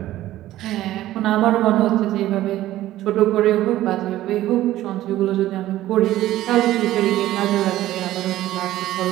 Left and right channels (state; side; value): quieter; left; 14.6 dB